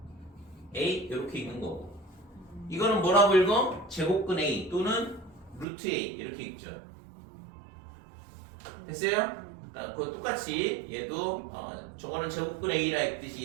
A 이렇게 읽는 거고. 이거는 뭐라고 읽어? 제곱근 A 또는 루트 A 이렇게 읽죠. 됐어요? 그러니까 그거 똑같이 얘도 저거는 제곱근 A라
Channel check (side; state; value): left; drops out; at 5.7 s